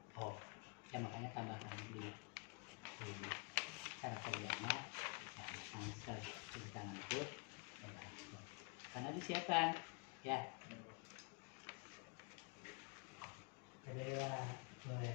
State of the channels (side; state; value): right; quieter; 34.8 dB